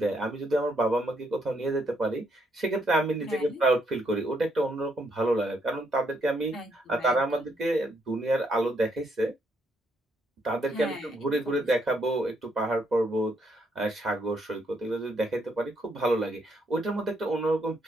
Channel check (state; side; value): normal; both; correlation 0.74